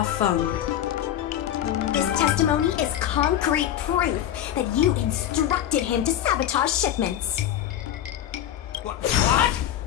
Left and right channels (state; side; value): quieter; right; 11.3 dB